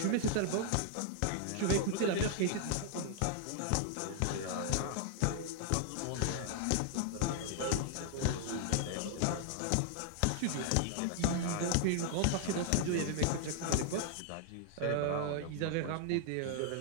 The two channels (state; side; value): different; both; correlation -0.01